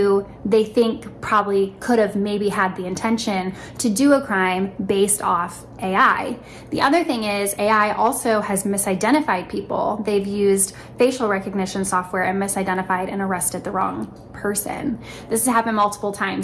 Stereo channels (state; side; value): identical; both; correlation 1.00